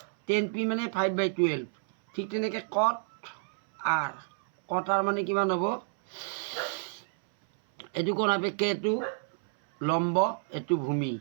10 পি মানে 5/12, ঠিক তেনেকৈ কট আৰ মানে কিমান হ'ব, এইটো কোণ সাপেক্ষে এইটো লম্ব, এইটো ভূমি,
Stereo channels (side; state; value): left; silent; 58 dB below the other